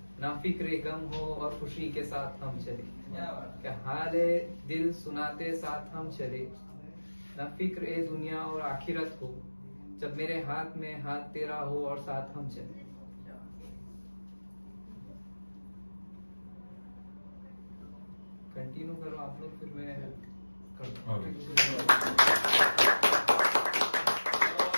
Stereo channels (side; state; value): both; inverted; correlation -1.00